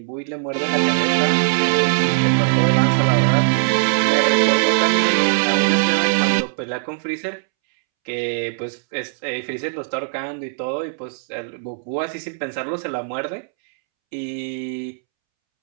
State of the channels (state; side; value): silent; left; 66 dB below the other